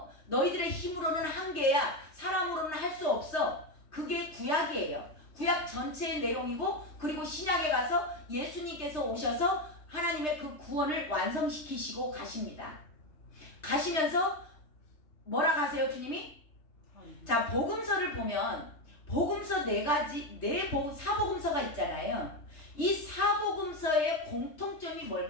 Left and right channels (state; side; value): late; right; 3.3 ms